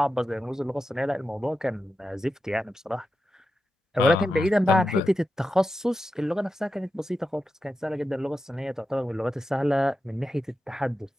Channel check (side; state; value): both; normal; correlation 0.90